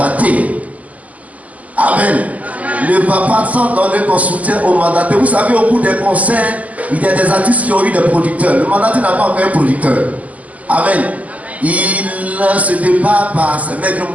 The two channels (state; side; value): late; left; 0.074 ms